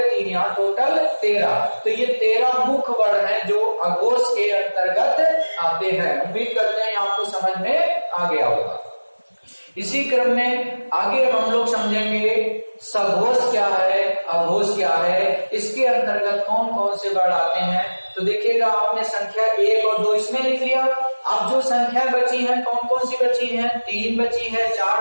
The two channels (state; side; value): inverted; both; correlation -1.00